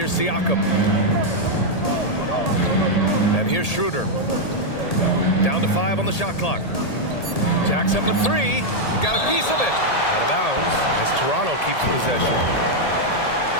Siakam. And here's Schroeder. Down to 5 on the shot clock. Jacks up at 3. Got a piece of it. Out of bounds as Toronto keeps possession.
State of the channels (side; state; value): right; late; 1.8 ms